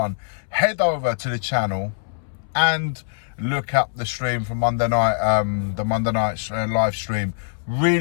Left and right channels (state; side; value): silent; right; 64 dB below the other